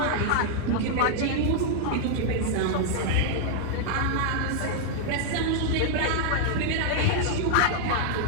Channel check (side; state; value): both; different; correlation -0.01